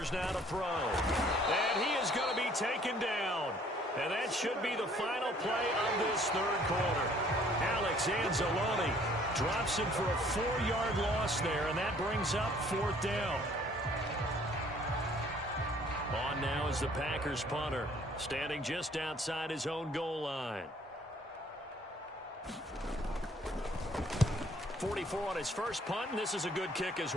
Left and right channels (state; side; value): normal; both; correlation 0.59